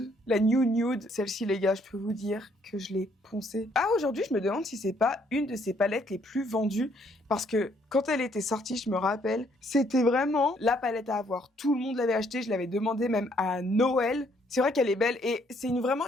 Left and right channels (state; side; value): normal; both; correlation 0.67